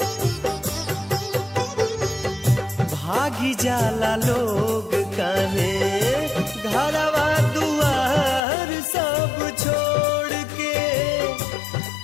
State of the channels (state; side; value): drops out; right; at 8.4 s